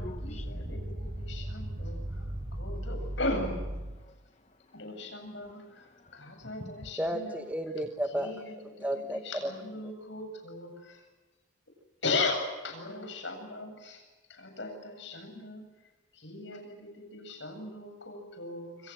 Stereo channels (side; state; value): both; normal; correlation 0.33